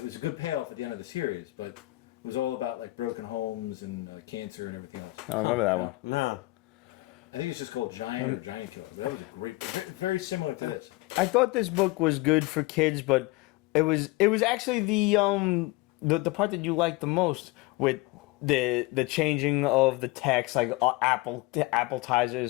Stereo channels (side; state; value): right; quieter; 21.6 dB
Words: was a good payoff at the end of the series, but it was all about like broken homes and cancer and everything else. I remember that one. No. I think it's just called Giant or Giant Killer, but that was a great, very similar to this. I thought this book was good for kids, but it was actually the part that you liked the most with the changing of the text, like